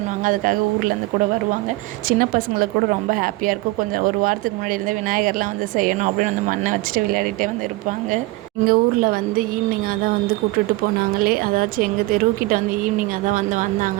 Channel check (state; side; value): quieter; left; 20.2 dB